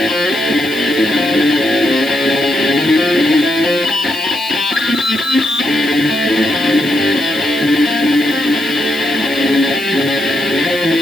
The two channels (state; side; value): noise; right; hiss, 15 dB below the sound